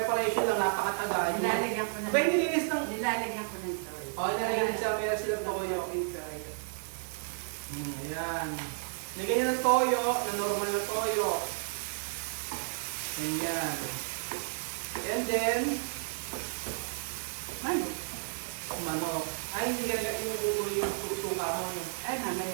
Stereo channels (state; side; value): silent; left; digital silence